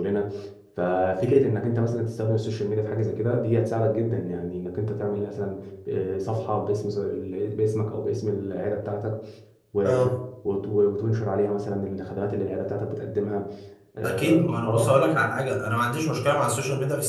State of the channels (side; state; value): both; identical; correlation 1.00